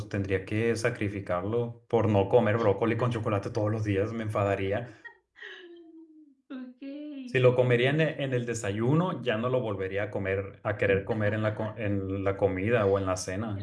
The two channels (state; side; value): identical; both; correlation 1.00